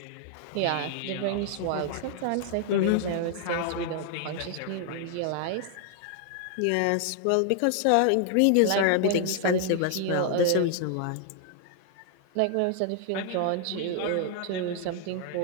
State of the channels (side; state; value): both; different; correlation 0.00